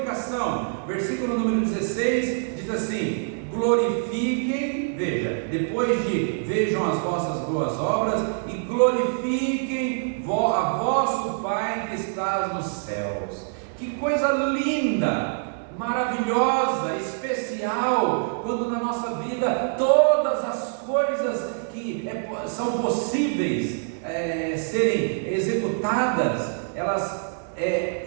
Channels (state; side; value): silent; left; 62 dB below the other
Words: Versículo número 16 diz assim: glorifiquem, veja, depois de vejam as vossas boas obras, e glorifiquem a vosso Pai que está nos céus. Que coisa linda, maravilhosa, especial, quando na nossa vida todas as coisas que são possíveis serem executadas, elas